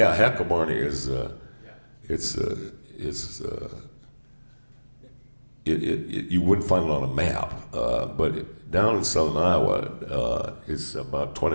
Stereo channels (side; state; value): both; inverted; correlation -1.00